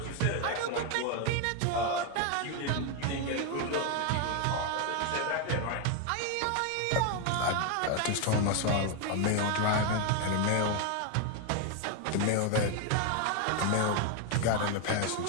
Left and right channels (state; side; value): different; both; correlation 0.01